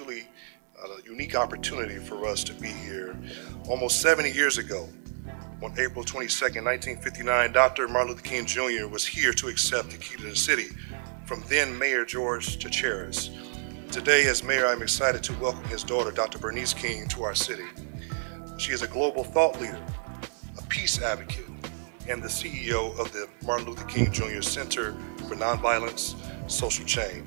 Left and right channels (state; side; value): silent; left; 58 dB below the other